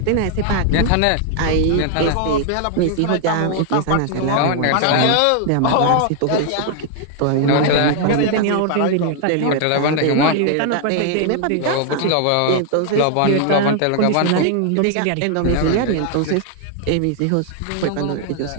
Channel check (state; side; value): different; both; correlation 0.00